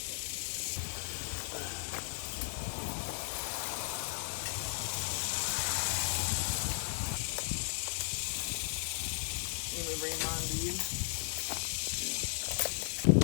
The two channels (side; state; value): right; silent; digital silence